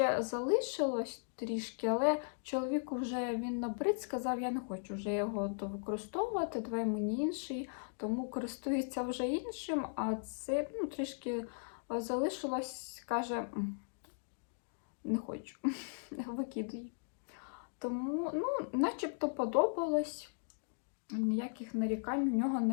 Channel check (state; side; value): silent; right; digital silence